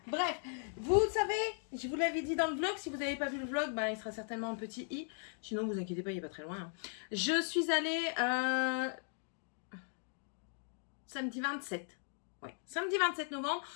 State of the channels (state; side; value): silent; right; 53 dB below the other